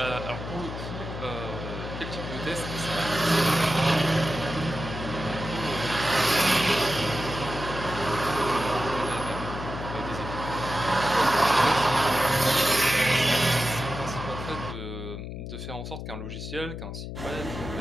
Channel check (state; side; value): noise; left; hum, 8 dB below the sound